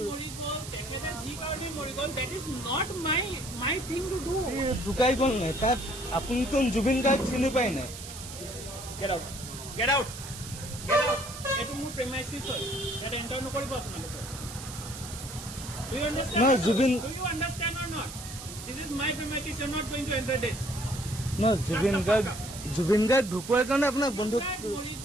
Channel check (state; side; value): noise; right; hiss, 11 dB below the sound